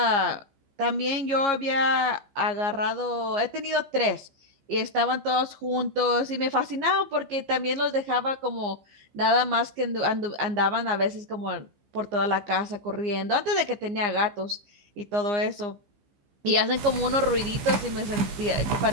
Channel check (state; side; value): late; left; 15 ms